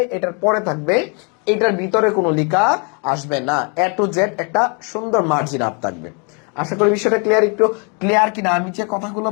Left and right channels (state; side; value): quieter; right; 35.5 dB